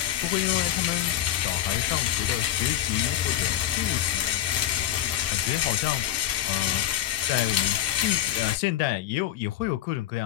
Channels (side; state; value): right; quieter; 12.5 dB